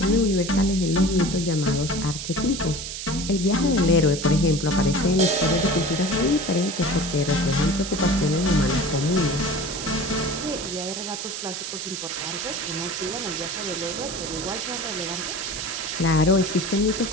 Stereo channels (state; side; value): noise; right; hiss, 7 dB below the sound